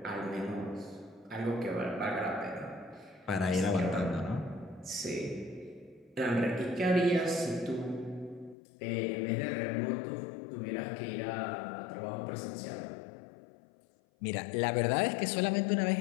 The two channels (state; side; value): drops out; right; at 8.6 s